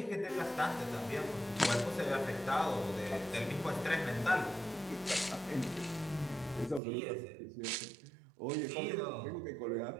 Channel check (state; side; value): drops out; left; at 6.8 s